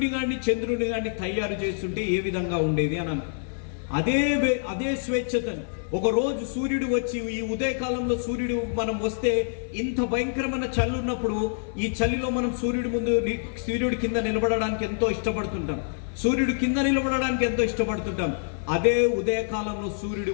గాని చంద్రుడిని గాని తయారు చేస్తుంటే ఏ విధంగా ఉండేది అని అదే స్వేచ్ఛతని ఒక రోజు సూర్యుడు వచ్చి, ఈ ఉదయకాలంలో సూర్యుడు మనం వస్తే ఇంత భయంకరమైన చలి ఉన్నప్పుడు, ఈ చలిలో మనం సూర్యుడి కింద నిలబడడానికి ఎంతో ఇష్టపడుతుంటాం, సూర్యుడు కింద నిలబడడానికి ఎంతో ఇష్టపడుతుంటాం. అదే ఉదయకాలంలో సూర్యుడు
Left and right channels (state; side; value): silent; right; 61 dB below the other